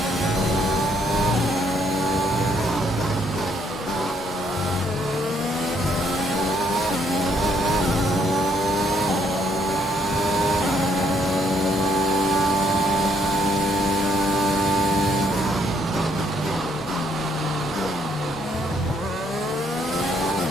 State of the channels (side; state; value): both; normal; correlation 0.70